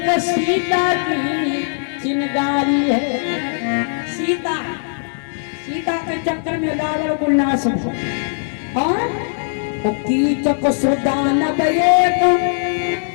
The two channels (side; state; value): right; silent; digital silence